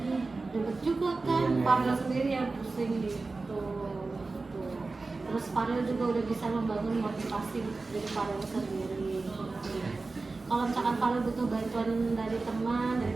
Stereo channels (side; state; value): left; quieter; 3.7 dB